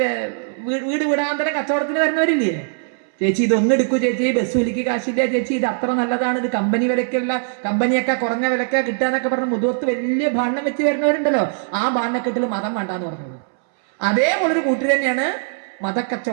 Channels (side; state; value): left; silent; 66 dB below the other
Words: വീട് വിടാന്തരം കച്ചവടത്തിന് വരുന്നവരില്ലേ? ചേച്ചി ഇതൊന്നും എടുക്കൂ ചേച്ചി, ബസ് വിലക്ക് കാശില്ല ചേച്ചി, ഇത് അത്ര നല്ലതാണ്, ഇത് കമ്പനി വിലക്കുള്ള, കമ്പനിയൊക്കെ കുറഞ്ഞ വിലക്ക കിട്ടാന്നൊക്കെ പറഞ്ഞ് മുതുവത്ത് വലിയ ബാണ്ണം വെച്ച് വരുന്നവരുണ്ടല്ലോ. ആ ബാണ്ണക്കെട്ടിൽ മതം വേണ്ടാന്ന് പറഞ്ഞോളൂ. അതേപോലൊരു കൂട്ടർ തന്നെയാണ്